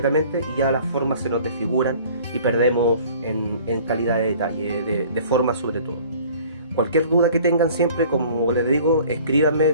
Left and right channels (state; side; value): inverted; both; correlation -0.50